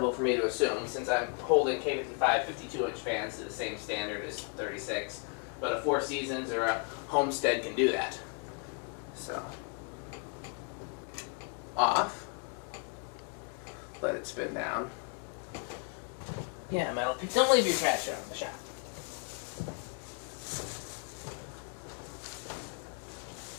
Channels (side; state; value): right; quieter; 35.6 dB